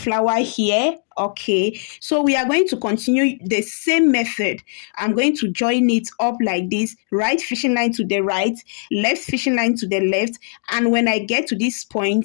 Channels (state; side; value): silent; right; digital silence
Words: here. Okay, so we are going to continue the same method. I'm going to join it up like this, right fishing line to the right, left fishing line to the left, and when I get to this